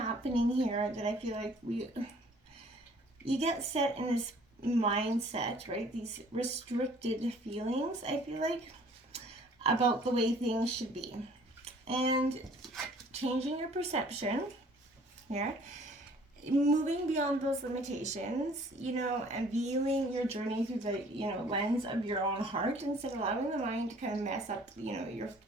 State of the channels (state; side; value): normal; both; correlation 0.55